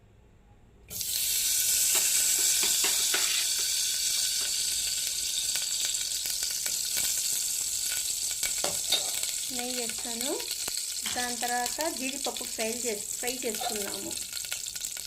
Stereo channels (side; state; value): both; identical; correlation 1.00